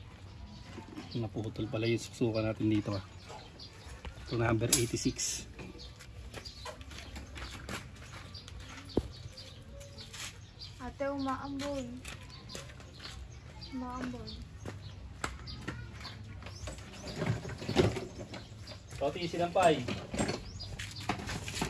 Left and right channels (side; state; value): both; identical; correlation 1.00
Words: Naputol pala yung susukan natin dito. Ito number 86. Ate, umaambon. Umaambon. So, tiisin ang pay.